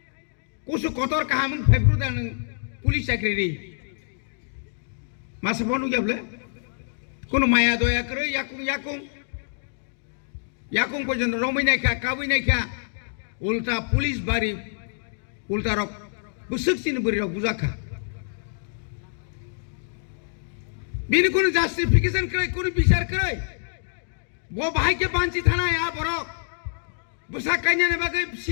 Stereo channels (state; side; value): silent; right; digital silence